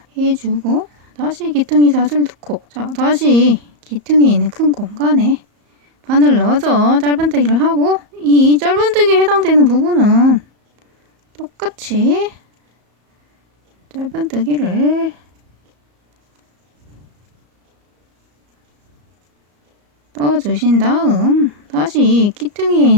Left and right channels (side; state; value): left; late; 34 ms